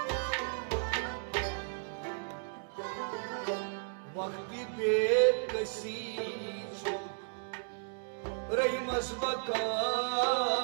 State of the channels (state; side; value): silent; left; digital silence